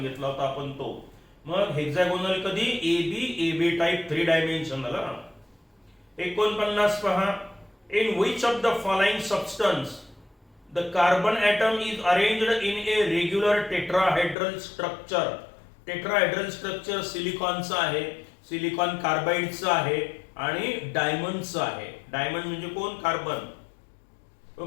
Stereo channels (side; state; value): right; drops out; at 14.4 s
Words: होता आपण तो. मग हेक्सागोनल कधी, एबी टाइप 3 डायमेन्शनल. 49 पहा. In which of the following substance the carbon atom is arranged in a regular tetrahedral structure. Tetrahedral structure सिलिकॉनचं आहे, सिलिकॉन कार्बाइडचं आहे आणि डायमंडचं आहे. डायमंड म्हणजे कोण, कार्बन.